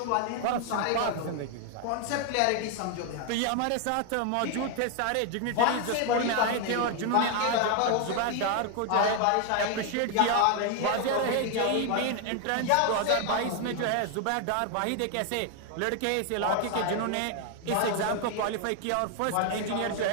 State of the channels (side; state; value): both; different; correlation 0.00